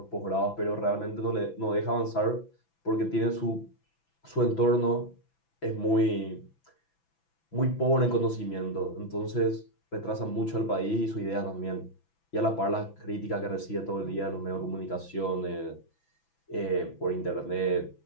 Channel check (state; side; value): late; right; 6.0 ms